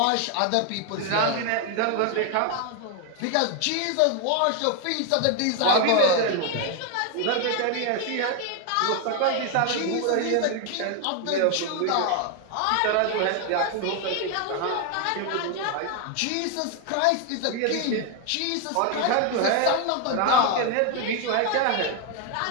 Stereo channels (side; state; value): both; different; correlation 0.01